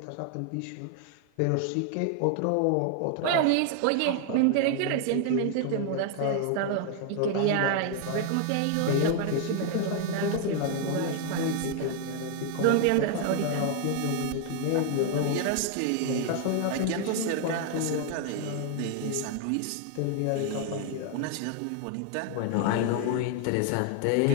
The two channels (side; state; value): both; different; correlation 0.00